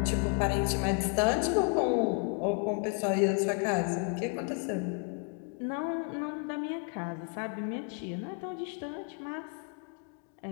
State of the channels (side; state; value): right; quieter; 35.0 dB